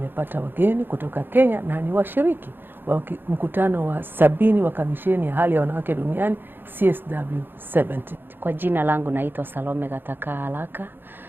wageni kutoka Kenya na ni washiriki wa mkutano wa 70 wa kamisheni ya hali ya wanawake duniani CSW70. Kwa jina langu naitwa Salome Gataka Haraka.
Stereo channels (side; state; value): left; late; 0.098 ms